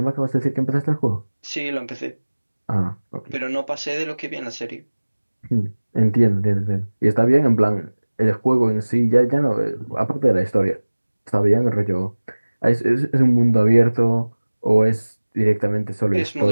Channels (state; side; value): inverted; both; correlation -1.00